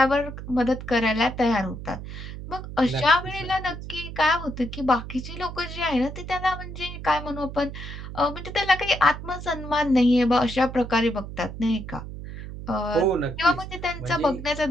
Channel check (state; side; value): noise; right; hum, 10 dB below the sound